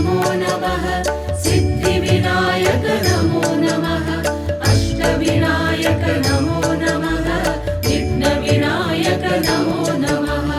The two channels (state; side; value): identical; both; correlation 1.00